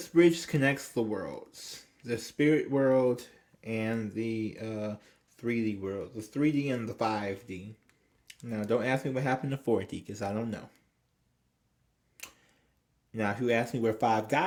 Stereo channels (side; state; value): both; identical; correlation 1.00